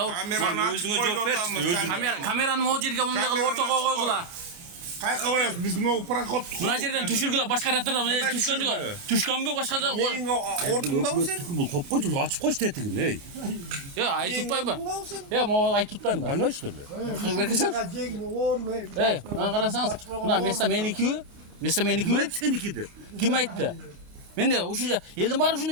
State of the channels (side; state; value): left; late; 29 ms